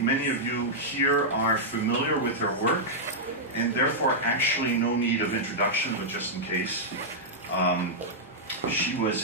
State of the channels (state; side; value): normal; both; correlation -0.08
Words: of you here are familiar with her work, and therefore actually no need of introduction, but just in case. She was